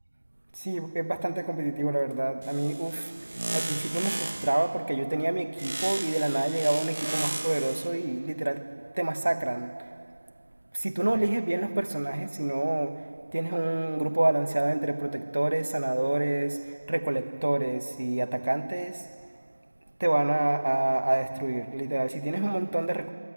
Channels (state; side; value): inverted; both; correlation -1.00